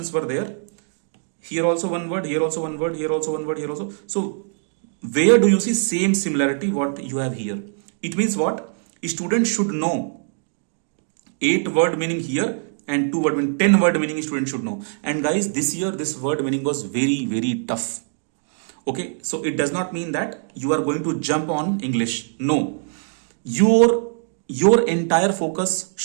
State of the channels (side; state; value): left; silent; 64 dB below the other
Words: were there. Here also one word, here also one word, here also one word, here also. So where do you see same similarity what you have here? It means what? A student should know 8 word meaning here and 2 word meaning, 10 word meaning a student should know. And guys, this year this word meaning was very tough. Okay, so it does not mean that you are going to jump on English. No, your entire focus